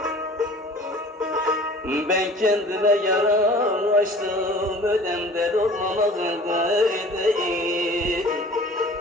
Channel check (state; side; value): normal; both; correlation 0.45